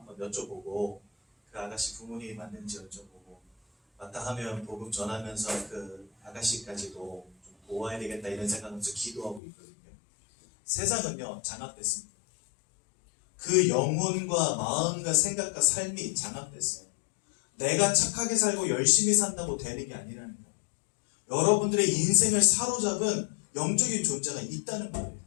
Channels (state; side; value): drops out; right; at 9.4 s